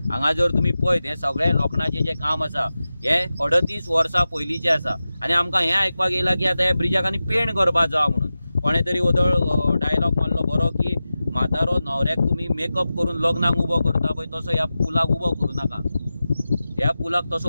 हांगा जर तुमी पळयत हे सगळे लोखणाचें जे काम आसा हे 38 वर्सां पयलींचें आसा आनी आमकां हें आयकपाक येयला की आतां ह्या ब्रिजाक आनी पेंट करपाक जाय म्हणून। कोणे तरी वदळ डायलॉग मारलो बरो की म्हातारो न्हवऱ्याक तुमी मेकअप करून लग्नाक उबो करता पळय तसो ह्या पुलाक उबो करूं नाका, ह्या पुलाक तसो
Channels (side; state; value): both; inverted; correlation -0.94